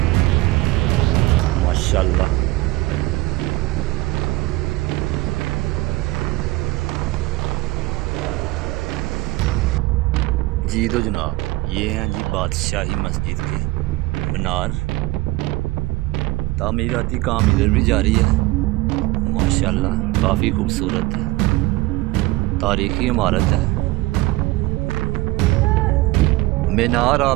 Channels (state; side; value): quieter; left; 19.9 dB